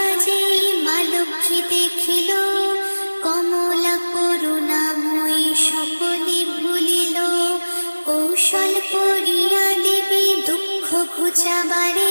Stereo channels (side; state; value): both; inverted; correlation -1.00